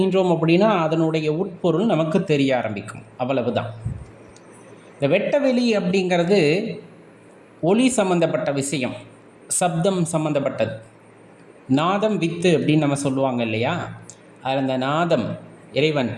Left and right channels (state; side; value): identical; both; correlation 1.00